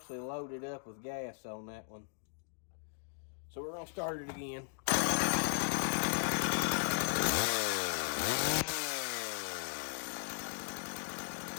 loaded up with gas on that one. So we're gonna start it again.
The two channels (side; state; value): right; silent; digital silence